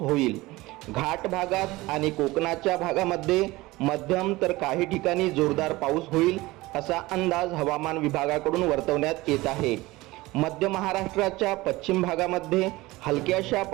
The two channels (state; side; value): quieter; left; 20.0 dB